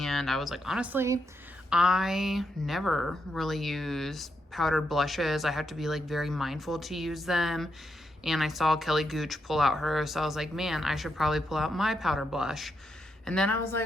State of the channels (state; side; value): normal; both; correlation 0.82